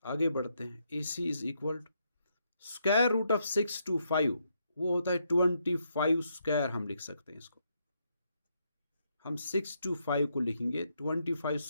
आगे बढ़ते हैं। AC is equal to square root of 625, वो होता है 25 स्क्वायर। हम लिख सकते हैं इसको, हम 625 को लिखेंगे 25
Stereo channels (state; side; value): inverted; both; correlation -0.77